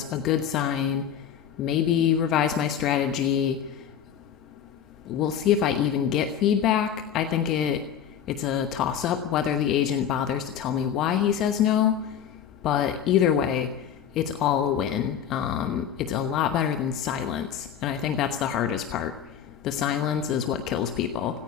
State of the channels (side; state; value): right; quieter; 8.8 dB